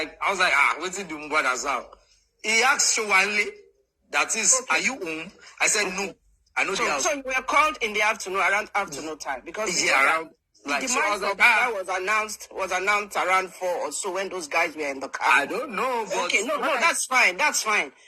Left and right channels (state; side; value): identical; both; correlation 1.00